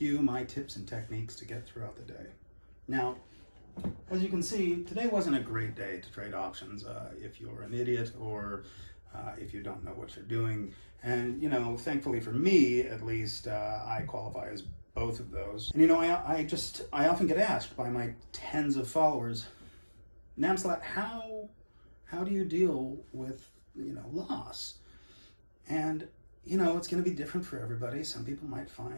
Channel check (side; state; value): both; inverted; correlation -1.00